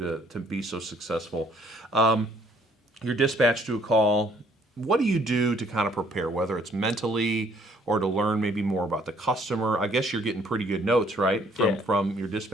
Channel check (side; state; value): both; normal; correlation 0.62